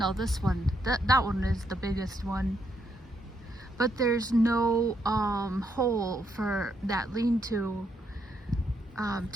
this one, that one is the biggest one. But there's no hole for that lean-to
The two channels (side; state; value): both; normal; correlation 0.76